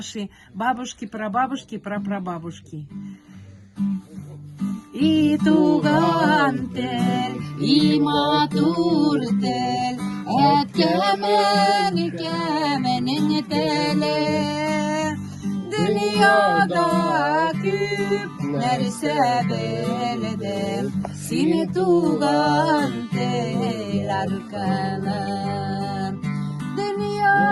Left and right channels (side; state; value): both; identical; correlation 1.00